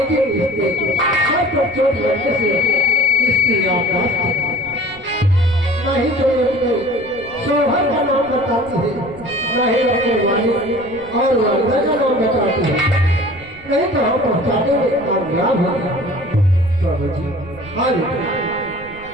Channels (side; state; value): right; noise; rumble, 23 dB below the sound